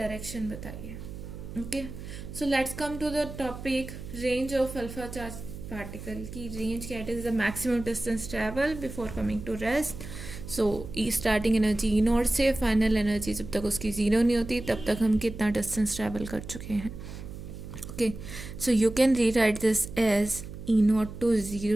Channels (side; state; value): right; noise; hum, 11 dB below the sound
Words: बताइए। Okay, so let's come to the topic range of alpha charge particle की रेंज क्या is the maximum distance travel before coming to rest. So starting energy e naught से final energy जब तक उसकी zero नहीं होती तब तक हम कितना डिस्टेंस ट्रैवल कर चुके हैं। Okay, so you can rewrite this as E nought to